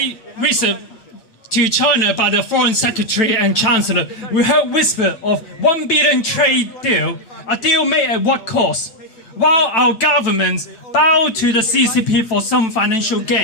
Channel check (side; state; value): right; late; 9.0 ms